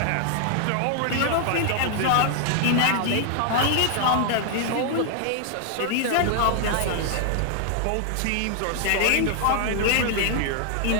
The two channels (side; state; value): both; different; correlation 0.00